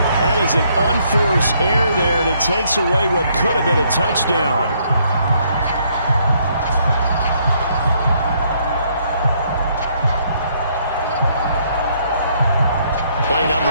That is an unforced error there, and it takes away what could have been a touchdown. Play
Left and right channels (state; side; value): inverted; both; correlation -0.69